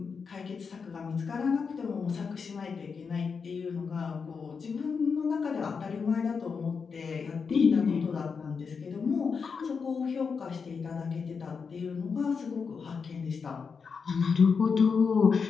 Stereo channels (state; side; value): quieter; right; 5.6 dB